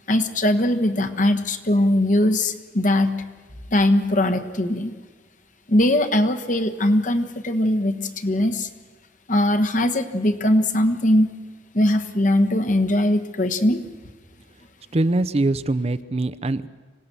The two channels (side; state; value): both; normal; correlation 0.74